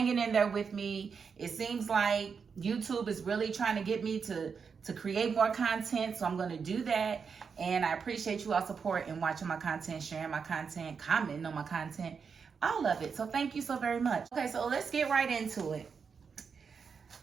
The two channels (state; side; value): quieter; left; 5.9 dB